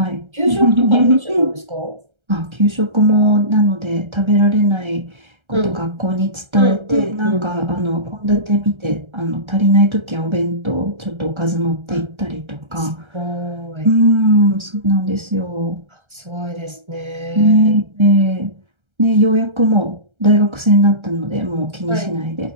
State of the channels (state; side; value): late; left; 1.3 ms